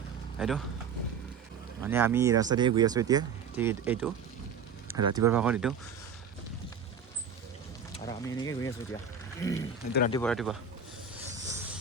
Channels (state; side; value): quieter; left; 6.2 dB